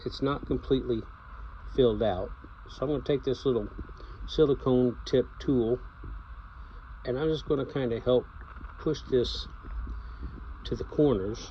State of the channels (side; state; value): both; identical; correlation 1.00